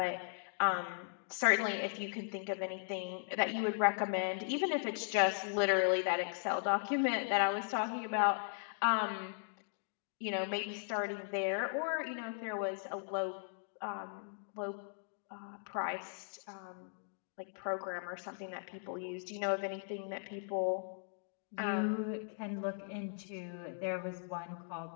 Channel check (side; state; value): right; silent; digital silence